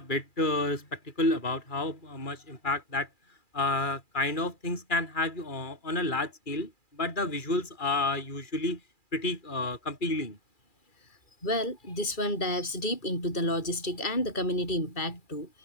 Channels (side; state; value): right; late; 2.4 ms